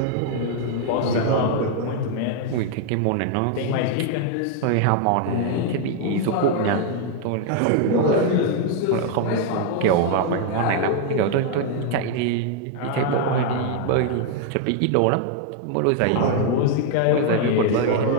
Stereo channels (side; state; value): both; different; correlation 0.00